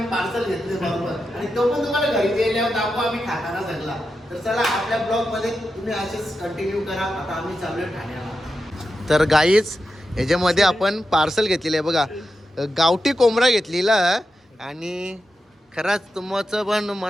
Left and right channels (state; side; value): normal; both; correlation 0.89